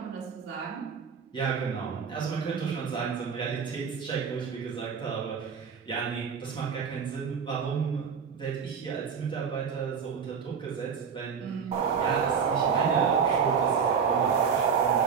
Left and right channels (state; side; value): quieter; left; 6.5 dB